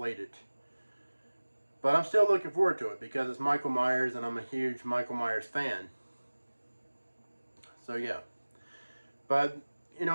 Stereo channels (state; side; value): inverted; both; correlation -1.00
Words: But I'm still looking forward to it because it's Michael Myers and I'm a huge Michael Myers fan. So yeah. But,